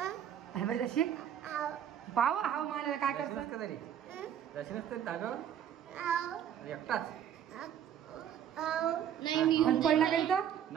धाब्यावर जाशील पाव हाव मला काय करतात एकटाच पडला काही तर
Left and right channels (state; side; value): quieter; left; 9.6 dB